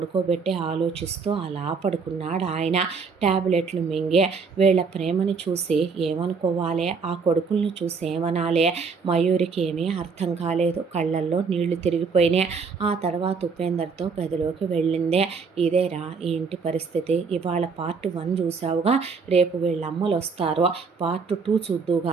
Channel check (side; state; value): left; quieter; 5.2 dB